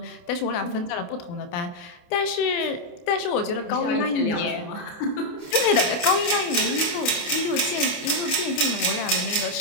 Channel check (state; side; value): late; right; 28 ms